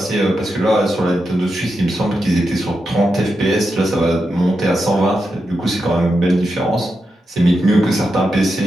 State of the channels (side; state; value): both; normal; correlation 0.87